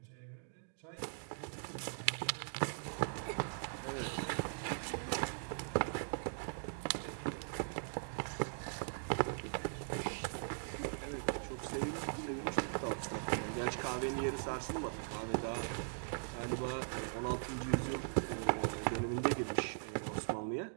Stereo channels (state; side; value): silent; left; digital silence